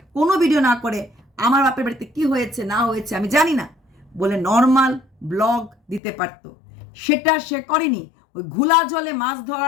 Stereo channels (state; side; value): drops out; right; at 6.0 s